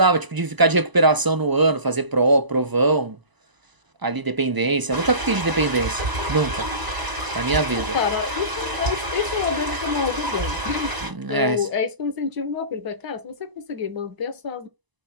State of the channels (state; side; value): late; left; 1.0 ms